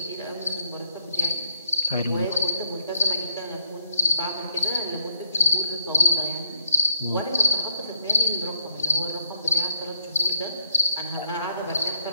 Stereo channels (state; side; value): inverted; both; correlation -0.68